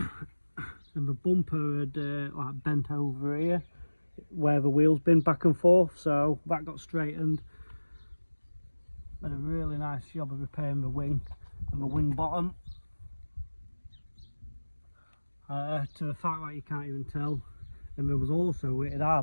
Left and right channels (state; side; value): inverted; both; correlation -1.00